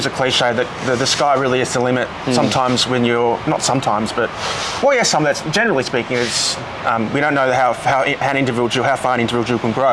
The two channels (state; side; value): identical; both; correlation 1.00